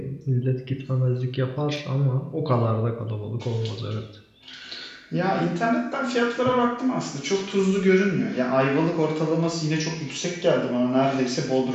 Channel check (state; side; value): identical; both; correlation 1.00